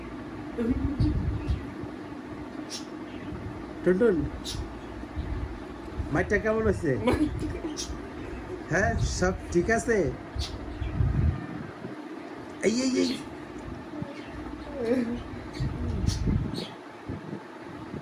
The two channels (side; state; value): both; identical; correlation 1.00